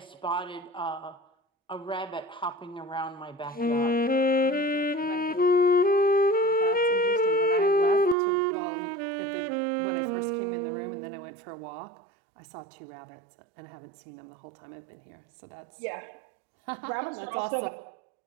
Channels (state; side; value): drops out; left; at 8.2 s